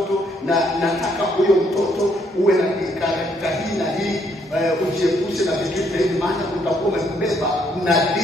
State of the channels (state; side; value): normal; both; correlation 0.71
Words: na nataka huyo mtoto uwe na karakta hii na hii, ujiepushe na vitu hivi, maana utakuwa umebeba